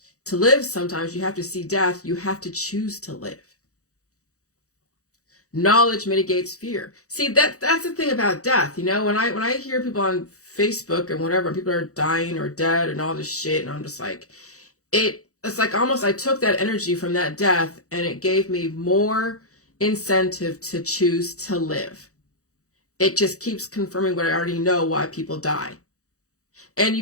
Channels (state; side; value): late; right; 0.65 ms